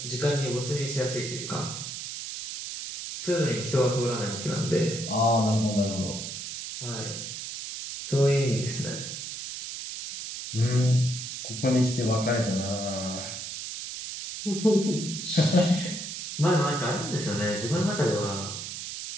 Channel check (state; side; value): noise; right; hiss, 7 dB below the sound